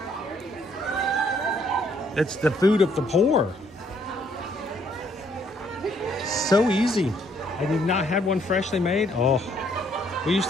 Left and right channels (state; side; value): normal; both; correlation 0.67